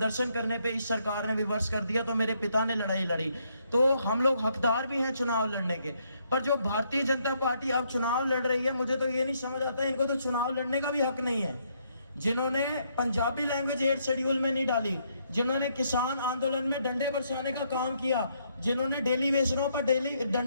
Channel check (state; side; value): inverted; both; correlation -0.73